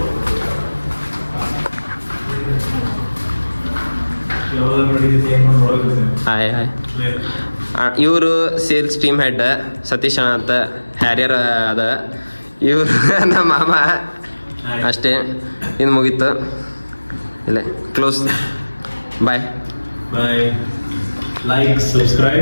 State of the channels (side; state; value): both; inverted; correlation -1.00